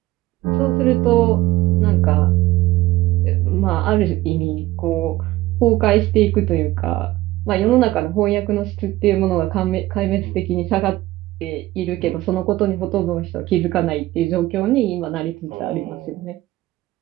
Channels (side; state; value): left; quieter; 17.1 dB